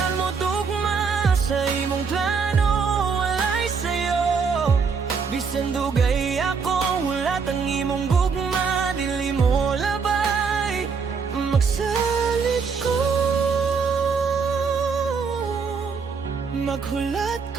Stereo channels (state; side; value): quieter; left; 5.5 dB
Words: mo tugma. Sa imong plano, walay sayo. Bisan dugay ako, hulat ang imong gugma. Dili mo labay, magsalit ko. Maghulat